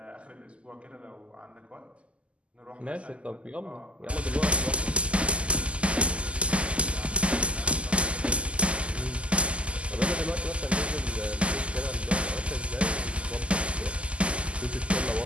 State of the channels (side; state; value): left; late; 0.056 ms